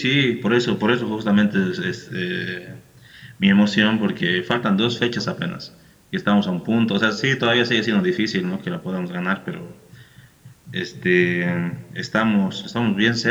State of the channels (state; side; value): identical; both; correlation 1.00